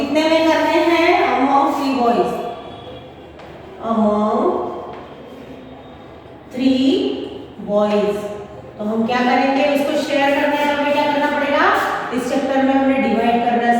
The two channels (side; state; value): both; identical; correlation 1.00